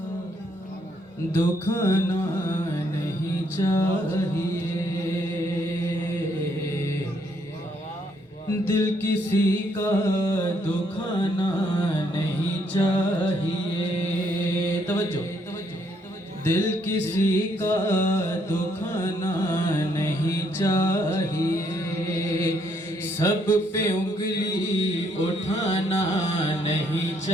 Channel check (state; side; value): normal; both; correlation 0.71